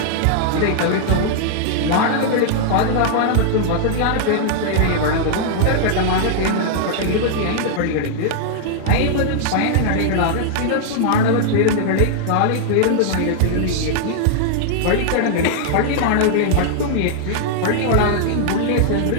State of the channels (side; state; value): both; different; correlation -0.01